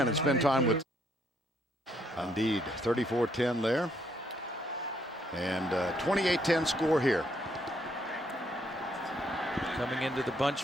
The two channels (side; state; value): both; normal; correlation 0.71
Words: and spend time with. Indeed, 34-10 there, and 28-10 score here. Coming into the bunch